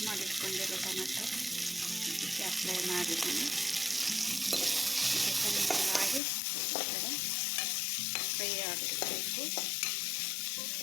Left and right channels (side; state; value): right; drops out; at 6.2 s